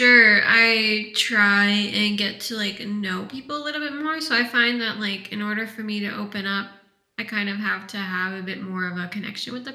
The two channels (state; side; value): identical; both; correlation 1.00